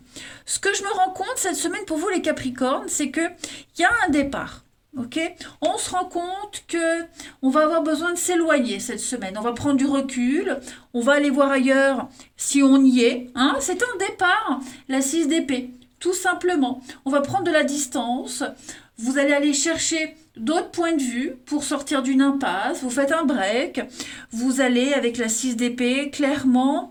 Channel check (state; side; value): identical; both; correlation 1.00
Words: Ce que je me rends compte cette semaine pour vous les Capricornes, c'est qu'il y a un départ. Ok, on se rend compte que on va avoir besoin de s'éloigner cette semaine. On va prendre du recul, on va aller voir ailleurs si on y est. Hein. C'est un départ, la 6 d'épée, tout simplement. On va prendre de la distance. Vous allez aller chercher d'autres points de vue pour sortir d'une impasse. Vous faites un break. Vous allez, avec la 6 d'épée,